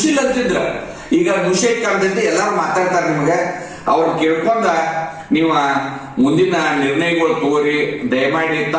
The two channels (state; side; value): identical; both; correlation 1.00